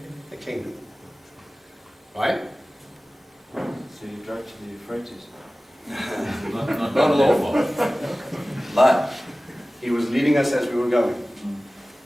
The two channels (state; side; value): normal; both; correlation 0.97